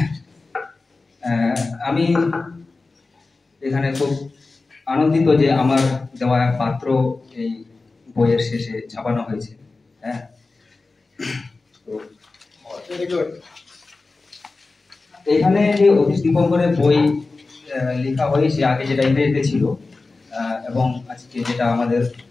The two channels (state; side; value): quieter; right; 3.7 dB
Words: আমি এখানে খুব আনন্দিত যে আমার দেওয়া পাত্র এই বইয়ের শেষে ছাপানো হয়েছে। হ্যাঁ, এখানে যে অতীশ দীপঙ্করের বই লেখা হয়েছে, আগে যেটা ইংরেজিতে ছিল এবং আজকে যেটা আমাদের